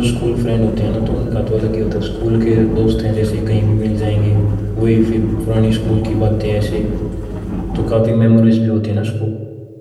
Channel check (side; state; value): both; identical; correlation 1.00